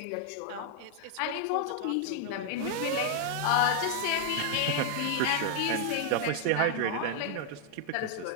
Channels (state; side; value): different; both; correlation 0.00